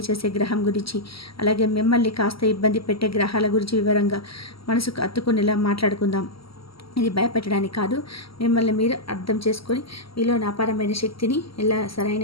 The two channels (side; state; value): right; late; 0.75 ms